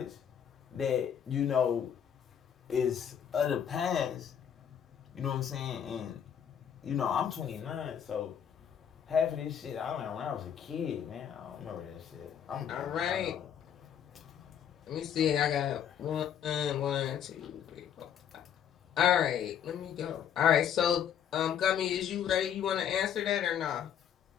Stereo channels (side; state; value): right; quieter; 8.9 dB